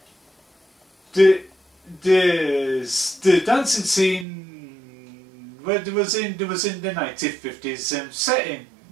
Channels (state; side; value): drops out; left; at 4.2 s